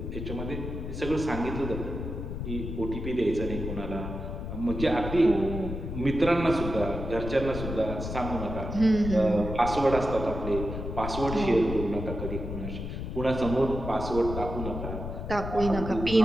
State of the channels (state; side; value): noise; left; rumble, 6 dB below the sound